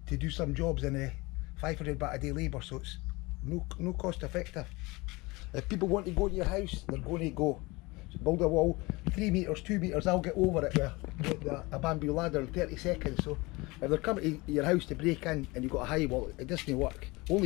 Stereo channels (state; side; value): quieter; right; 23.6 dB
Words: to do some jobs in 500 baht a day labour, so it's no cost effective. If people want to go to your house, they're going to go. So build a wall 3 metres, 2 metres, I'll get over it with a bamboo ladder in 30 seconds. So if they're coming to your house to break in and you've got a high wall, it doesn't work.